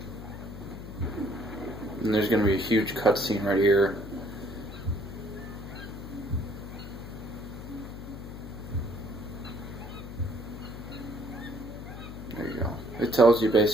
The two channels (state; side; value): noise; left; hum, 11 dB below the sound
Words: And there's going to be a huge cutscene right here. There you go. It tells you